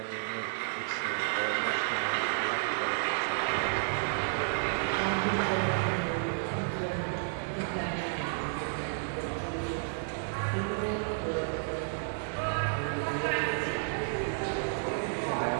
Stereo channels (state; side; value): silent; left; 57 dB below the other